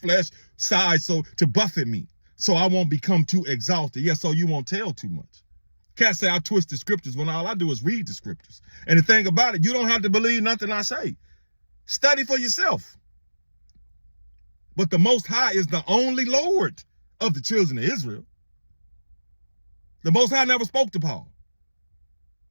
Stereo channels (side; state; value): both; inverted; correlation -1.00